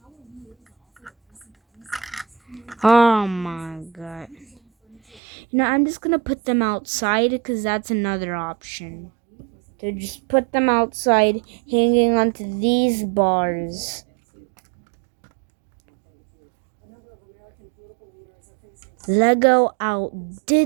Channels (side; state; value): left; drops out; at 5.2 s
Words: Oh my god. I'm just gonna put them outside because that's another option. To just put them outside hanging onto these bars. Lego